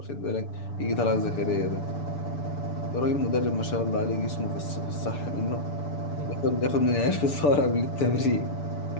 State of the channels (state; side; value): late; right; 6.9 ms